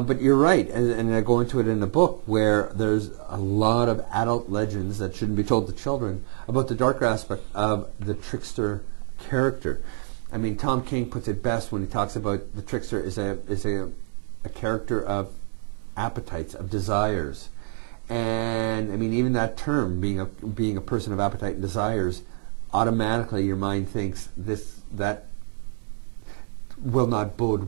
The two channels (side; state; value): left; silent; 61 dB below the other